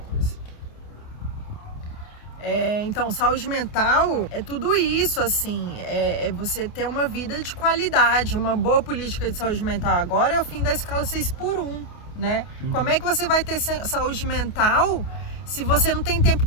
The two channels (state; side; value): late; right; 28 ms